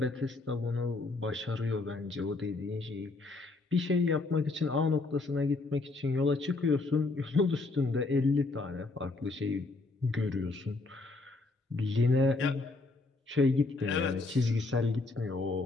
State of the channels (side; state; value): right; quieter; 3.4 dB